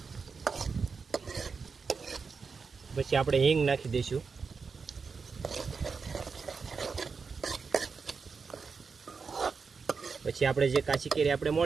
પછી આપણે હિંગ નાખી દઈશું. પછી આપણે જે કાચી કેરી આપણે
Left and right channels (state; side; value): quieter; left; 5.2 dB